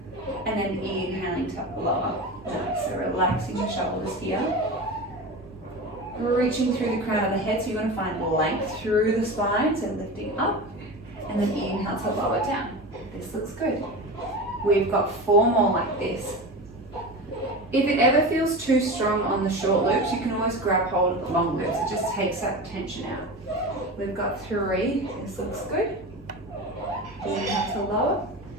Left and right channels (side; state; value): both; normal; correlation 0.27